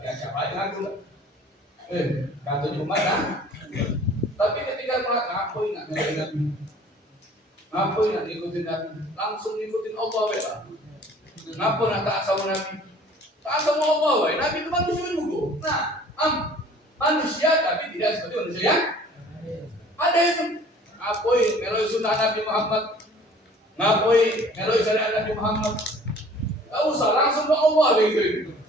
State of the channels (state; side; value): normal; both; correlation 0.50